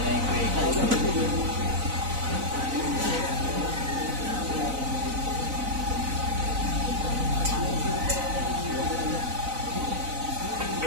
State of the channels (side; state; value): left; late; 4.0 ms